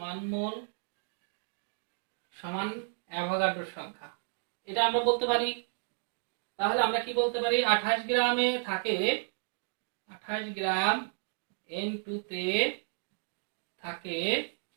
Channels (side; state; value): left; silent; digital silence